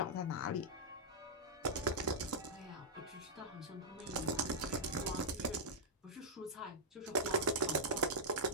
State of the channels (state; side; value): normal; both; correlation -0.10